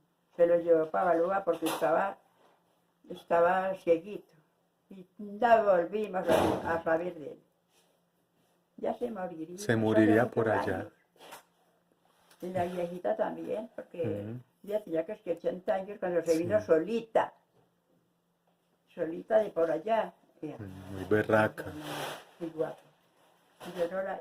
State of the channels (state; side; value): identical; both; correlation 1.00